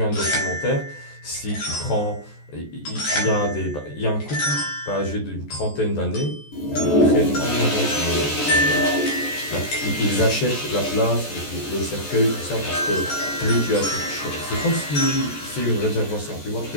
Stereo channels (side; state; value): right; late; 14 ms